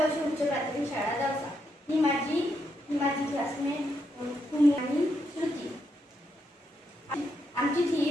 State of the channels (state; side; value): normal; both; correlation 0.80